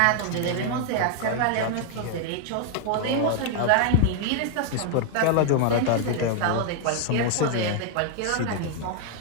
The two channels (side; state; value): both; different; correlation 0.00